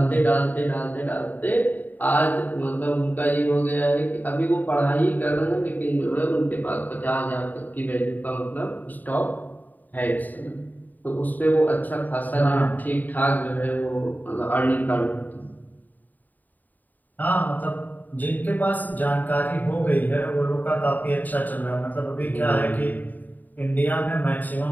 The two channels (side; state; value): right; late; 0.085 ms